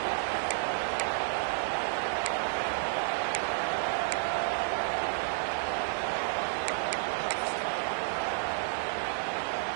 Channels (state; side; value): silent; left; 57 dB below the other